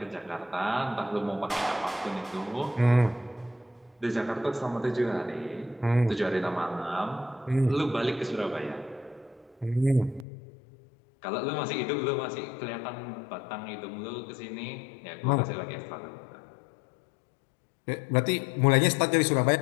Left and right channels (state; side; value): drops out; right; at 10.2 s